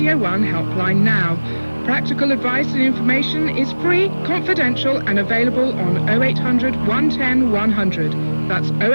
1 helpline now. Practical advice and information is free, confidential and available on 0800 110 100. That's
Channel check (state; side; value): inverted; both; correlation -1.00